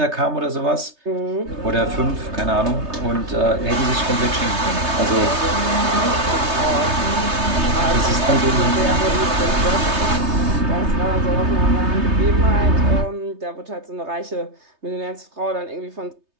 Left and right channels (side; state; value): left; late; 3.3 ms